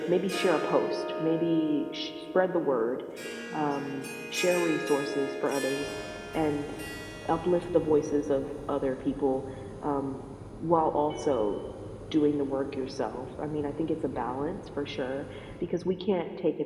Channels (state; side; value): identical; both; correlation 1.00